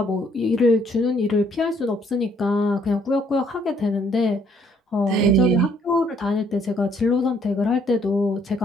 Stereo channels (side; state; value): both; normal; correlation 0.66